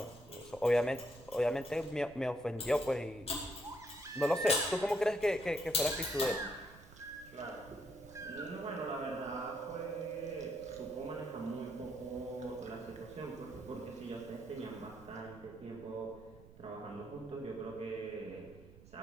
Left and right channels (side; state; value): right; noise; rumble, 20 dB below the sound